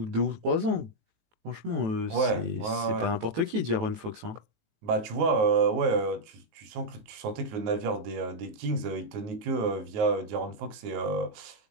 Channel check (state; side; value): late; left; 18 ms